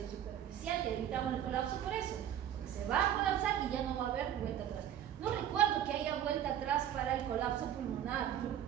superficial, que evitamos el colapso por eso, porque se va a colapsar y ya no va a haber vuelta atrás. No recuerdo que haya vuelta atrás para el colapso pulmonar.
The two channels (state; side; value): quieter; left; 10.4 dB